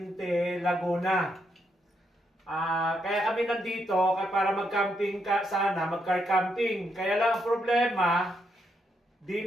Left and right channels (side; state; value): both; normal; correlation 0.79